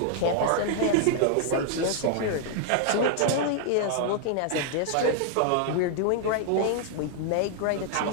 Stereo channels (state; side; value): different; both; correlation 0.00